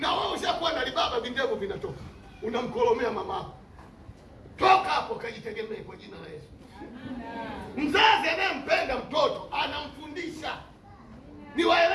wewe ushakuwa na libaba, vindevu vinatoka, unamkolomea mamako. Toka hapo, kajitegemee kwa jina la Yesu. Mzazi anayempenda mtoto anamfundisha.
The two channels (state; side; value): identical; both; correlation 1.00